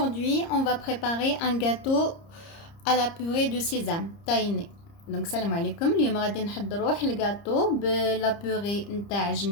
on va préparer un gâteau à la purée de sésame tahini. Donc salam alaikum, اليوم غادي نحضروا الgâteau بلا purée نتاع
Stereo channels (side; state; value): right; late; 30 ms